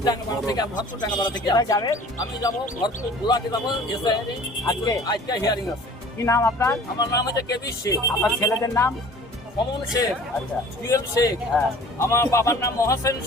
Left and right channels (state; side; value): normal; both; correlation 0.47